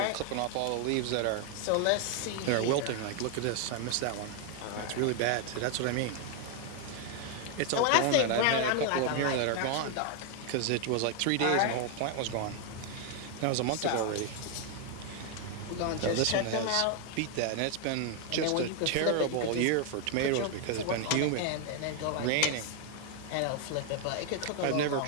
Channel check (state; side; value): different; both; correlation 0.01